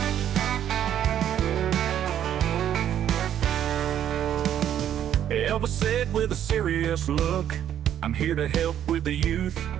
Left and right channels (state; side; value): quieter; left; 10.3 dB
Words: Elvis said with a serious look, I'm here to help with the youth.